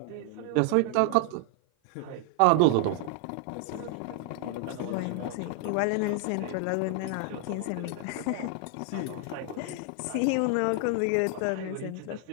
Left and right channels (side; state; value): both; different; correlation 0.00